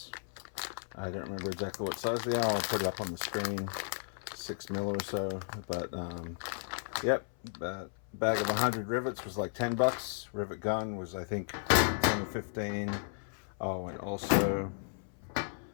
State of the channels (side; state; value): right; silent; 55 dB below the other